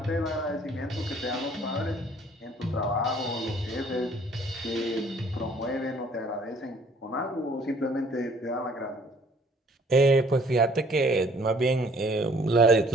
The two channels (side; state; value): both; normal; correlation 0.58